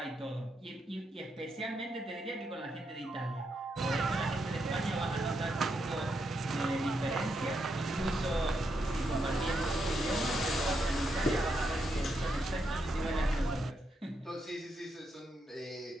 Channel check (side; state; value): both; normal; correlation 0.81